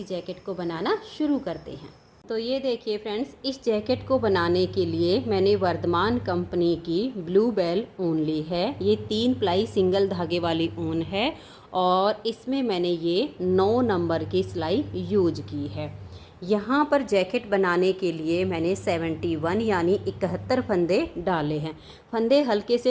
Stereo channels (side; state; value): both; identical; correlation 1.00